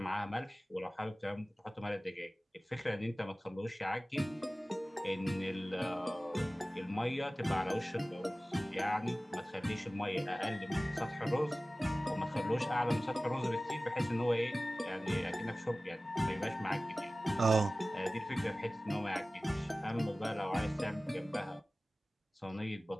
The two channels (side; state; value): both; normal; correlation 0.97